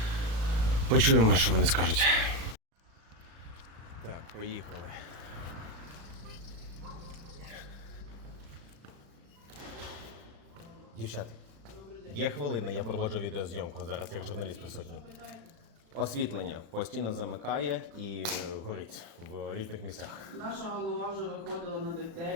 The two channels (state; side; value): late; left; 36 ms